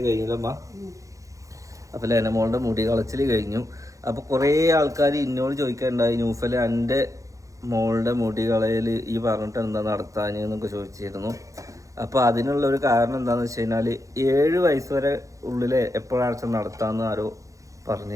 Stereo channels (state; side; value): late; left; 0.16 ms